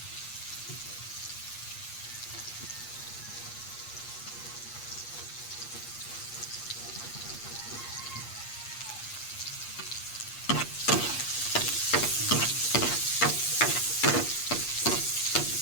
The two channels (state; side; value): late; right; 8.4 ms